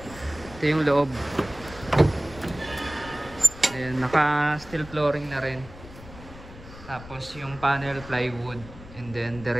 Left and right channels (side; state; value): left; noise; rumble, 16 dB below the sound